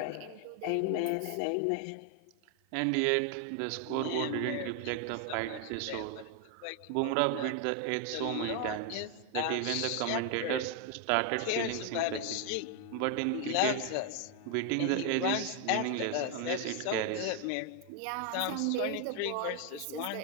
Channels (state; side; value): different; both; correlation 0.01